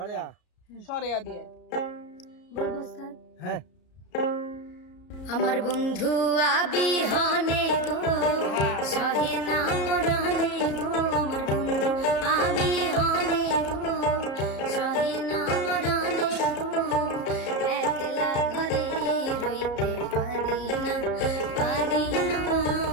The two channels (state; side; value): late; right; 34 ms